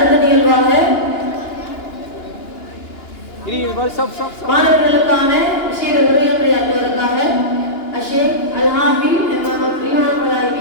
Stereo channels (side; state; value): right; late; 2.9 ms